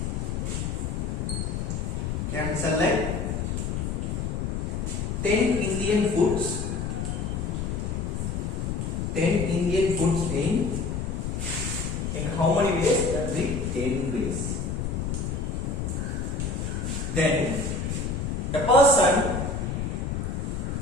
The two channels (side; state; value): left; noise; rumble, 2 dB below the sound